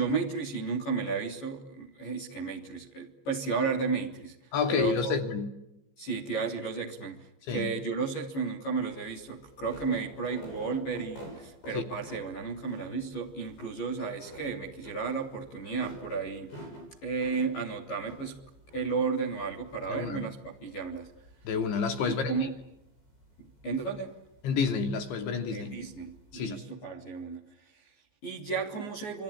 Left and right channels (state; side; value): late; right; 14 ms